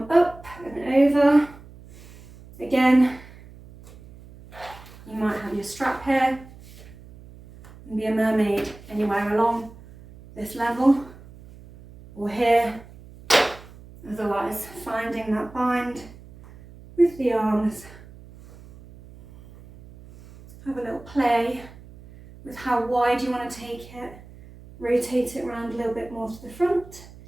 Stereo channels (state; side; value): noise; right; hum, 20 dB below the sound